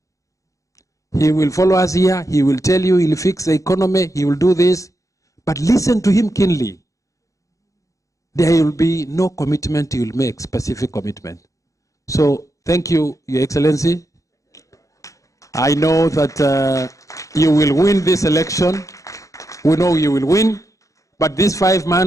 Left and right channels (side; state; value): right; late; 0.16 ms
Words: He will follow us here. He will tell you he'll fix the economy. He will do this. But listen to him keenly. There will be no commitment he will make, specific commitment. So thank you, Your Excellency. I know that you will win this election. We know you will win. But these 5